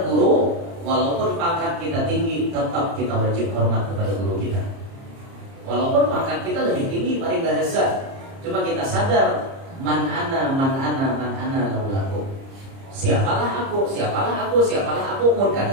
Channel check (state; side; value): late; left; 30 ms